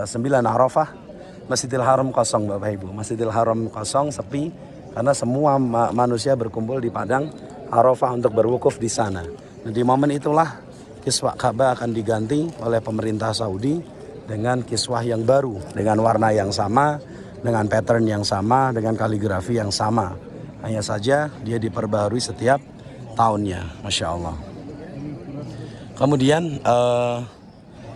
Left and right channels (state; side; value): identical; both; correlation 1.00